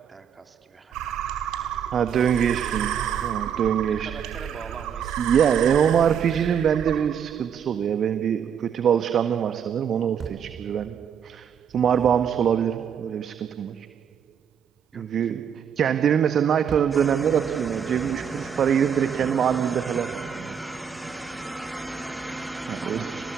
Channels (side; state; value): left; quieter; 8.0 dB